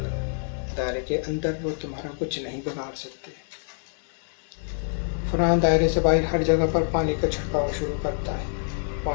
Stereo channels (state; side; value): silent; right; digital silence